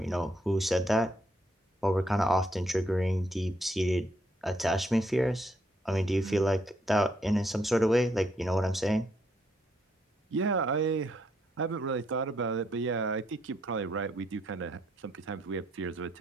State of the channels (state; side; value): normal; both; correlation 0.73